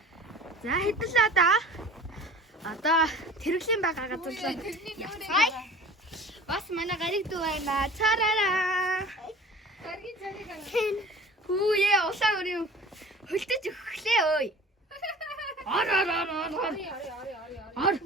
За хэдэлээ да. Одоо тэрэглийн байгаа газар руу. Бас манай гариг дүү байна. Цараараа. Гаргийн цариг аа. Хүүе улаан өрөө хөлтөж өглөө ой. Ор.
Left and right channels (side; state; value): both; normal; correlation 0.43